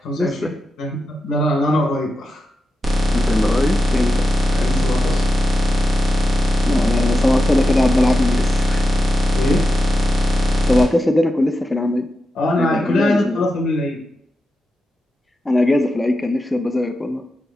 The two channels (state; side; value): normal; both; correlation 0.90